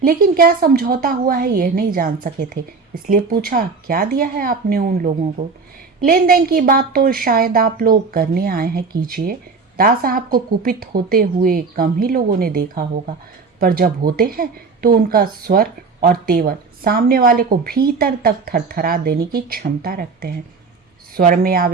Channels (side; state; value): left; quieter; 4.6 dB